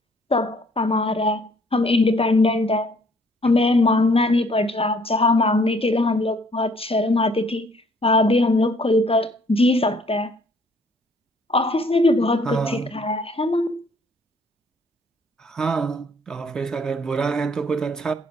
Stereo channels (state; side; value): normal; both; correlation 0.61